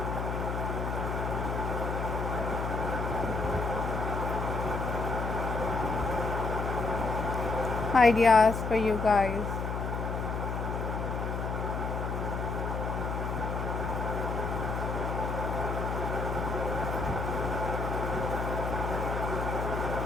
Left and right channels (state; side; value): noise; left; hum, 3 dB below the sound